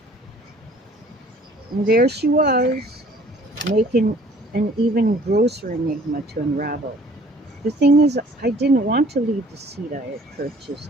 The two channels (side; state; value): both; normal; correlation 0.54